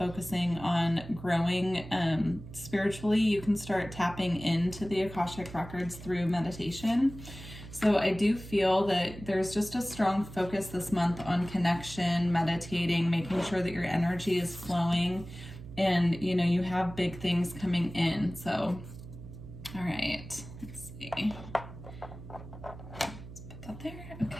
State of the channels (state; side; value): noise; right; hum, 14 dB below the sound